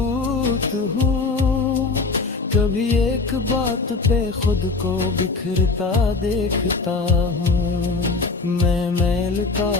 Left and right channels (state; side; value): quieter; right; 4.0 dB